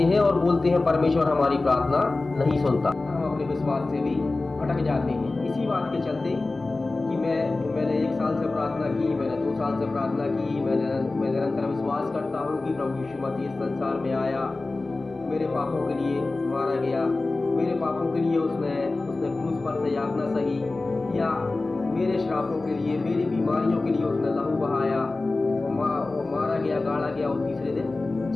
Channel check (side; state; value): right; quieter; 3.3 dB